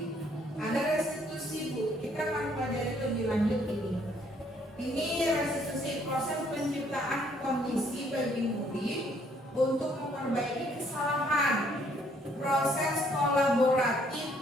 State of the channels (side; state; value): both; normal; correlation 0.66